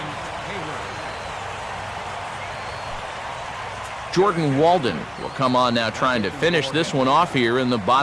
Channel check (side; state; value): right; noise; hum, 29 dB below the sound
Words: Jordan Walden will come on now trying to finish this one off here in the